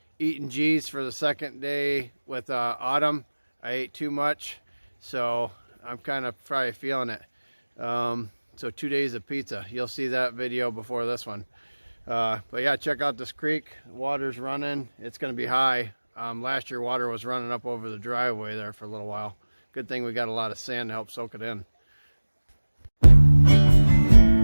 eating G's for the second day with Autumn. I ate too much, so I'm kind of probably feeling it. So 2 days of pizza. You'll see that video before this one. But yeah, check out this creek. Water's running. It's going to be high. Last year water was running up over the driveway there for a little while. Good thing we got a lot of sand to help soak it in.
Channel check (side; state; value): both; inverted; correlation -1.00